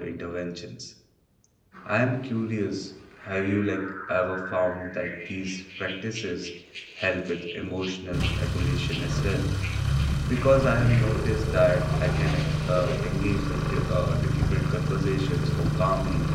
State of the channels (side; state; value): both; identical; correlation 1.00